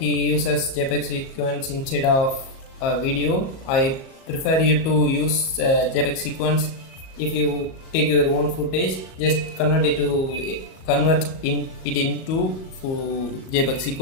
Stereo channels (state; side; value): late; right; 37 ms